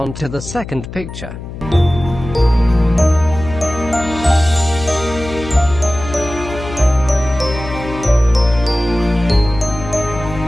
to the second picture.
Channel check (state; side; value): noise; left; hum, 11 dB below the sound